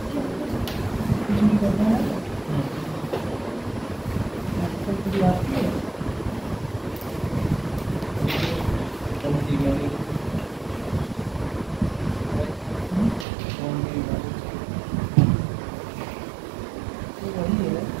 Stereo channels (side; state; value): left; drops out; at 13.2 s